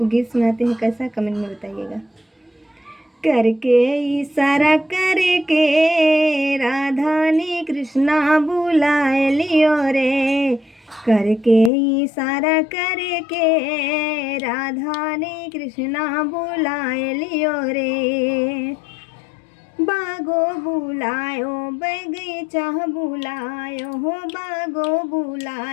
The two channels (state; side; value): drops out; right; at 11.7 s